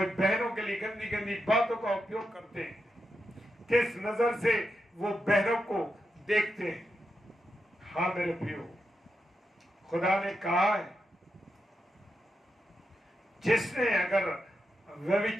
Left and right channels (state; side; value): normal; both; correlation 0.86